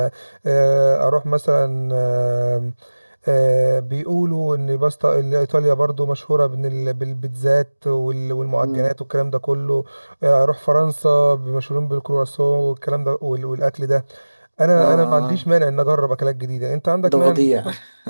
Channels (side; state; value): both; inverted; correlation -1.00